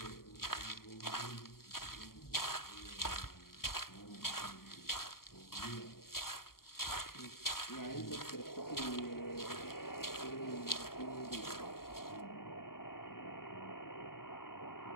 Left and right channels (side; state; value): right; late; 0.92 ms